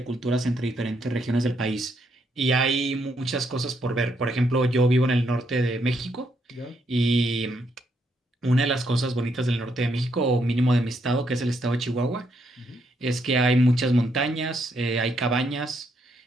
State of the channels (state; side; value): normal; both; correlation 0.75